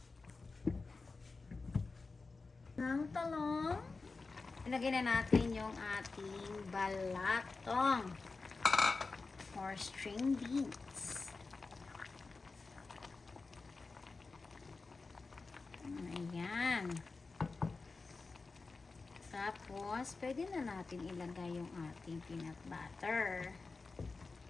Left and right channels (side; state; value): right; quieter; 4.0 dB